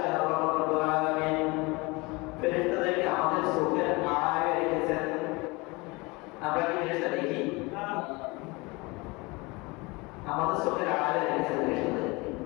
আল্লাহ রাব্বুল আলামিন ফেরেশতাদেরকে আমাদের চোখের আড়ালে রেখেছেন। আমরা কি ফেরেশতা দেখি? আমাদের চোখের আড়ালে রেখেছেন ফেরেশতাদেরকে।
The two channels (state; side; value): quieter; right; 25.3 dB